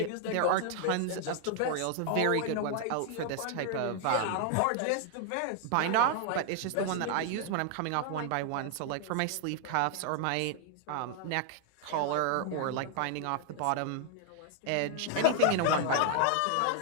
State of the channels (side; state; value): both; different; correlation 0.00